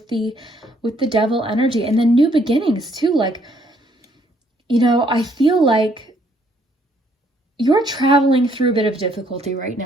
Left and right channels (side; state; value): both; normal; correlation 0.67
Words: the Devil energy. And then new beginnings too. Like, you know, I feel like you're traveling through a bit of difficulty right